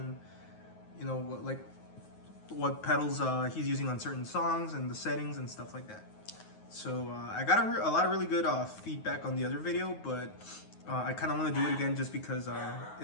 you know what pedals he's using on certain songs and the settings and stuff like that. So I got a lot of really good feedback on the other video, but I kind of want to do it again just because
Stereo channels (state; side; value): late; right; 9.4 ms